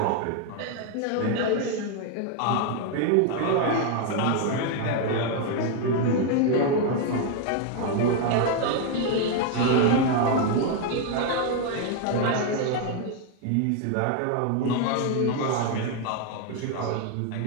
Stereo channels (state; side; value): different; both; correlation 0.01